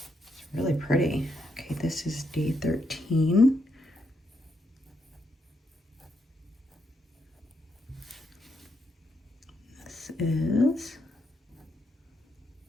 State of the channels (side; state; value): both; normal; correlation 0.79